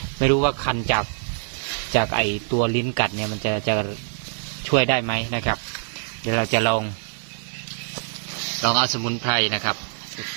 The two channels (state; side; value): silent; left; 62 dB below the other